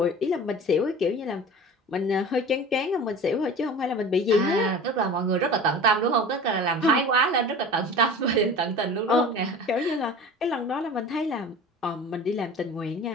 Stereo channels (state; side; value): normal; both; correlation 0.38